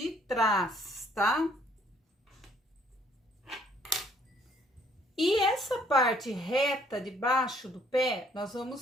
trás, tá? E essa parte reta de baixo do pé, nós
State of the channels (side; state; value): both; normal; correlation 0.63